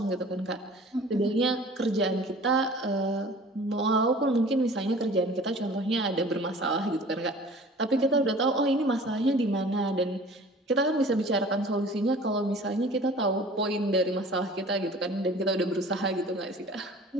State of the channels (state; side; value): normal; both; correlation 0.46